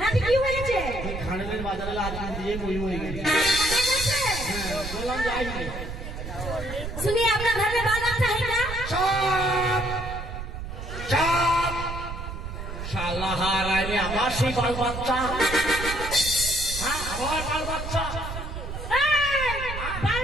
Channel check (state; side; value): noise; right; rumble, 7 dB below the sound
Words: রাতে কি হয়েছে? ওই খানের বাজারে আজকে দিয়ে বই হয়ে গেছে। হ্যাঁ বললাম যাইনি। सुनिए आपका घर में बाल बच्चा है क्या? চাপ চাপ শালা হারানি আমার সেই বাল বাচ্চা। হ্যাঁ আমার বাল বাচ্চা बाल